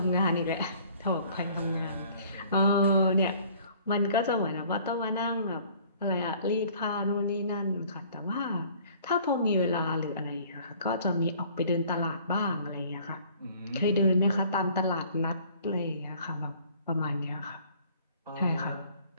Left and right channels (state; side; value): inverted; both; correlation -0.54